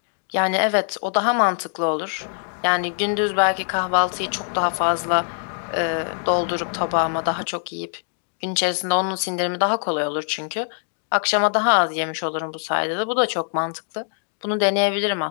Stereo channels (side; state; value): right; silent; digital silence